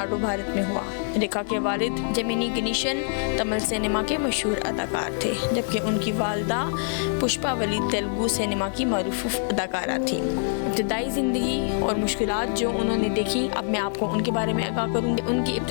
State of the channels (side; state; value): right; silent; 62 dB below the other